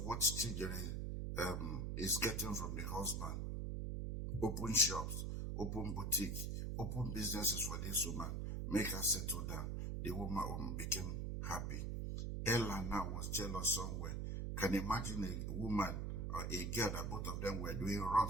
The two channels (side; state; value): right; noise; hum, 2 dB below the sound